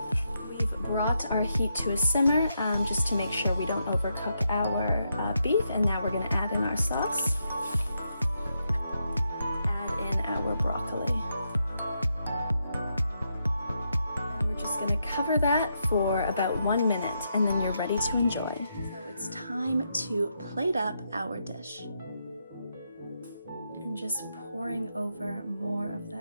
We've brought our heat to a simmer just to make sure we don't overcook our beef, and now we're going to add in our sauce. Add in our broccoli. Going to cover that for about 1 minute, and then you're ready to enjoy. So it's time to plate up our dish. And just pouring over more of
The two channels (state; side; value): inverted; both; correlation -0.81